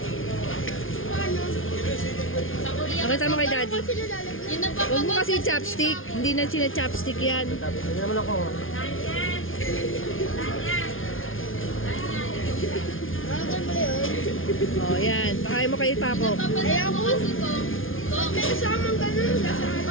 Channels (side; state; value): right; late; 0.58 ms